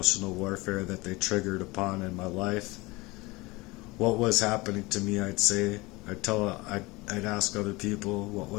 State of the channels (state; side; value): quieter; right; 22.9 dB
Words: warfare that they triggered upon in my life. What was happening to me, I'd say, I'd ask other people what